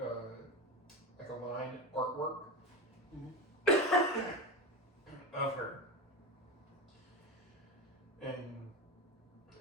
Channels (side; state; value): both; normal; correlation 0.19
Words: line artwork of her, and